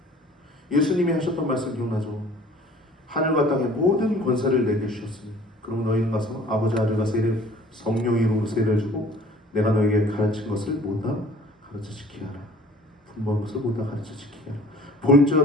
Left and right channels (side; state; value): both; normal; correlation 0.50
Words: 예수님이 하셨던 말씀 기억나죠? 하늘과 땅의 모든 권세를 내게 주셨으니 그럼 너희는 가서 아버지 아들과 세례 성령의 이름으로 세례를 주고 내가 너에게 가르친 것을 모두 가르쳐 지키게 하라. 분부한 것을 모두 가르쳐 지키게 하라.